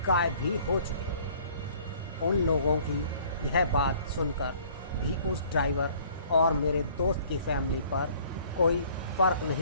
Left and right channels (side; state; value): both; inverted; correlation -0.55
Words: गायब भी हो चुके। उन लोगों की यह बात सुनकर भी उस ड्राइवर और मेरे दोस्त की फैमिली पर कोई फ़र्क